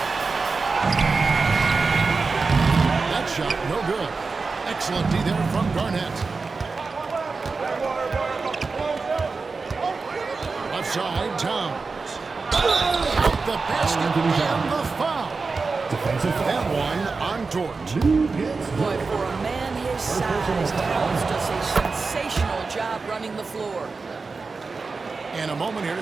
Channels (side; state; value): left; quieter; 4.3 dB